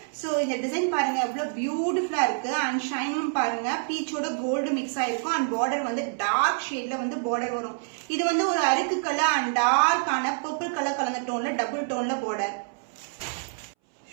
சோ இந்த டிசைன் பாருங்க எவ்வளவு பியூட்டிஃபுல்லா இருக்கு. அண்ட் ஷைனும் பாருங்க பீச்சோட கோல்டு மிக்ஸ் ஆயிருக்கும். அண்ட் பார்டர் வந்து டார்க் ஷேட்ல வந்து பார்டர் வரும். இது வந்து ஒரு அருக்கு கலர் அண்ட் டார்க்கான பர்பிள் கலர் கலந்த டோன்ல டபுள் டோன்ல பார்டர்.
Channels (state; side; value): silent; left; 60 dB below the other